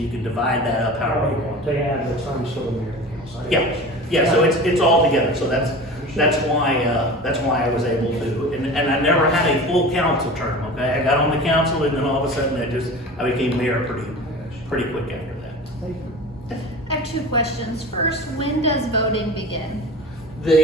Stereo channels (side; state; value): both; normal; correlation 0.35